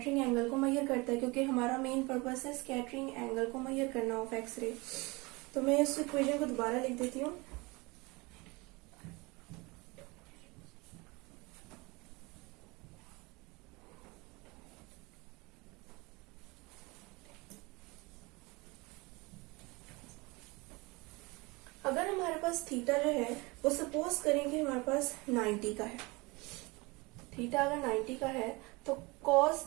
एंगल को मेजर करता है, क्योंकि हमारा मेन पर्पस है स्कैटरिंग एंगल को मेजर करना ऑफ एक्स रे। तो मैं इस इक्वेशन को दोबारा लिख देती हूँ। अगर हमारे पास थीटा जो है वो सपोज करें कि हमारे पास 90 का है, थीटा अगर 90 का है तो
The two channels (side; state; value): left; quieter; 25.1 dB